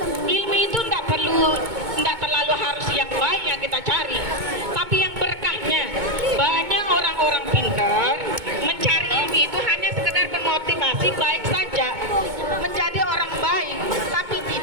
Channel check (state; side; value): late; left; 2.2 ms